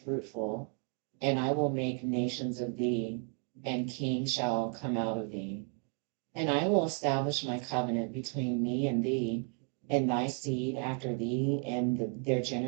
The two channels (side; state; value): left; quieter; 38.0 dB